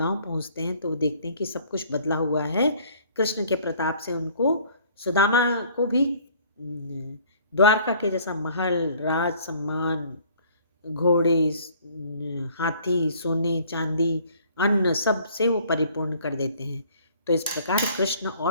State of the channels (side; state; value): both; inverted; correlation -0.56